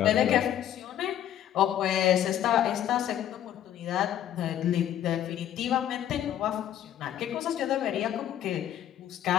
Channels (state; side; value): quieter; right; 11.0 dB